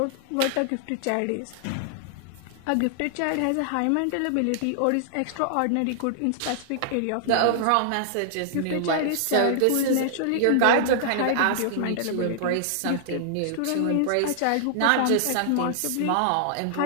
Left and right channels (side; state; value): both; different; correlation -0.01